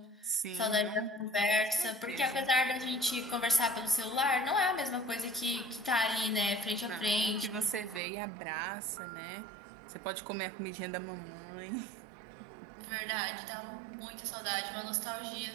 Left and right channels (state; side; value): drops out; left; at 8.0 s